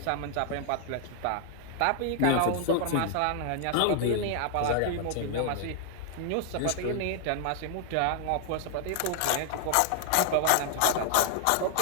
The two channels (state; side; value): different; both; correlation 0.00